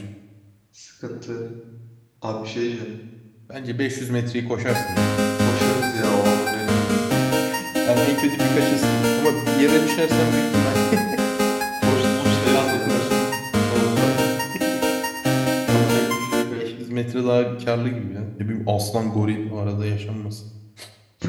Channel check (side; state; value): both; identical; correlation 1.00